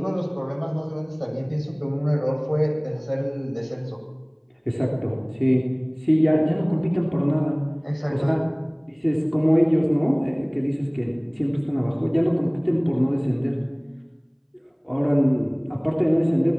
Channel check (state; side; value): identical; both; correlation 1.00